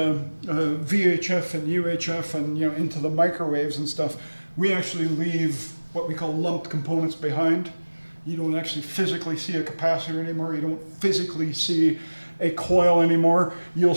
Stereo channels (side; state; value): both; inverted; correlation -1.00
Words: VHF and UHF and into the microwaves and stuff, we actually leave what we call lumped components behind. You don't actually physically see a capacitor anymore. You don't physically see a coil anymore. You'll